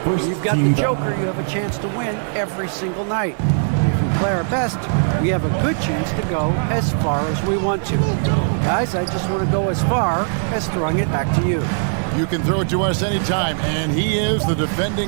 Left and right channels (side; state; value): left; silent; digital silence